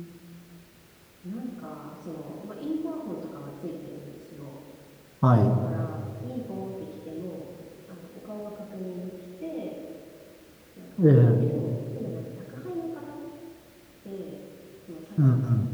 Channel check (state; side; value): identical; both; correlation 1.00